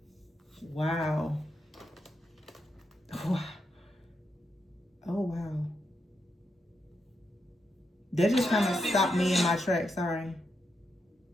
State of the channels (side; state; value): both; normal; correlation 0.83